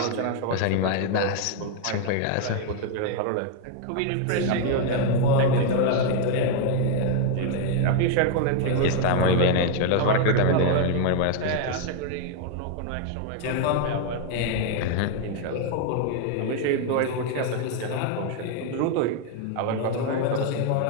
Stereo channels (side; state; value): both; different; correlation 0.00